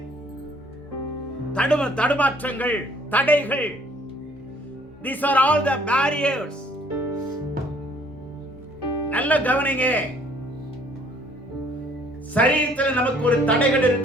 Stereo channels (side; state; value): both; normal; correlation 0.59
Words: தடுமாற்றங்கள், தடைகள். These are all the barriers. நல்ல கவனிங்க. சரீரத்தில் நமக்கு ஒரு தடைகள்